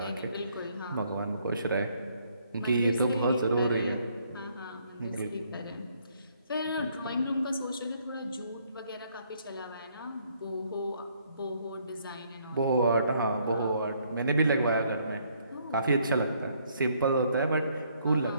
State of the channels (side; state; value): both; inverted; correlation -0.68